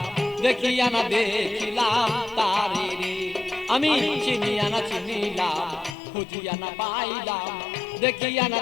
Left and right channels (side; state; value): right; drops out; at 6.0 s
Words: দেখিয়া না দেখিলাম তারে রে। আমি চিনিয়া না চিনিলাম, খুঁজিয়া না পাইলাম, দেখিয়া না